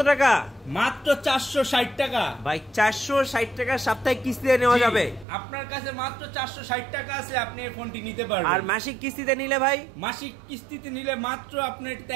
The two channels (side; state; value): left; drops out; at 5.2 s